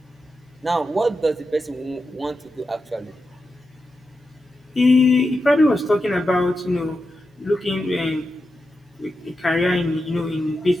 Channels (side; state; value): both; normal; correlation 0.89